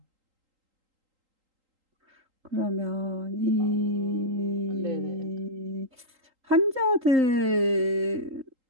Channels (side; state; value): left; late; 3.8 ms